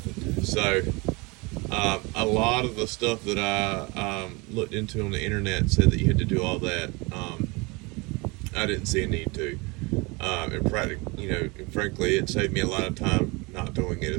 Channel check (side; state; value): left; quieter; 26.6 dB